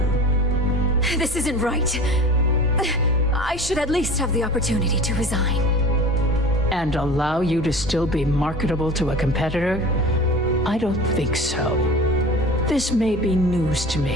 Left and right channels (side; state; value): both; normal; correlation 0.38